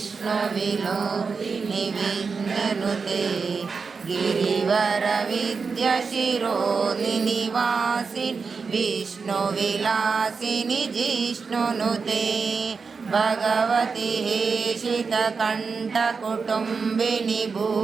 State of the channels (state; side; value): quieter; left; 5.0 dB